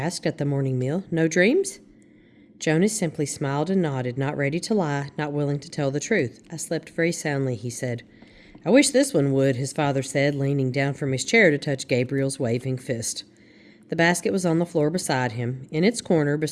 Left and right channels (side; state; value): both; identical; correlation 1.00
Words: at the morning meal. "No dreams?" Jonas simply smiled and nodded, not ready to lie, not willing to tell the truth. "I slept very soundly," he said. "I wish this one would," his father said, leaning down from his chair to touch Gabriel's waving fist. The basket was on the floor beside him. In its corner,